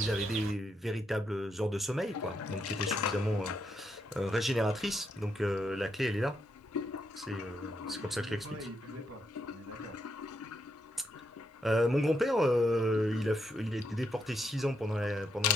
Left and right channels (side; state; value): both; normal; correlation 0.80